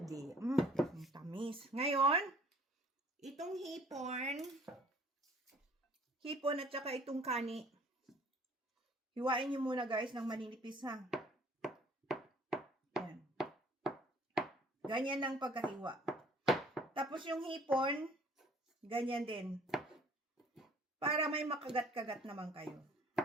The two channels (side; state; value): both; normal; correlation 0.55